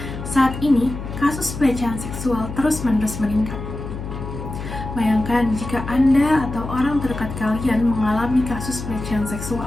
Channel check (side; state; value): left; noise; hum, 8 dB below the sound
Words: Saat ini, kasus pelecehan seksual terus-menerus meningkat. Bayangkan jika Anda atau orang terdekat kalian mengalami kasus pelecehan